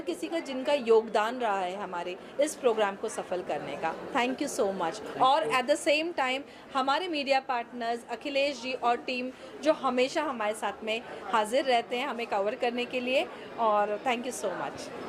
का जिनका योगदान रहा है हमारे इस प्रोग्राम को सफल करने का। Thank you so much. और एट द सेम टाइम हमारे मीडिया पार्टनर्स अखिलेश जी और टीम जो हमेशा हमारे साथ में हाजिर रहते हैं हमें कवर करने के लिए, और thank you so much.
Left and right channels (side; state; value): both; identical; correlation 1.00